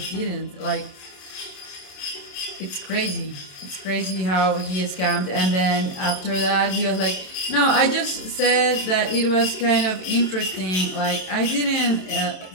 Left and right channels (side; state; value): right; late; 27 ms